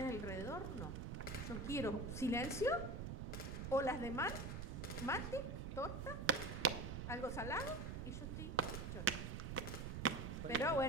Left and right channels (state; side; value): noise; right; rumble, 5 dB below the sound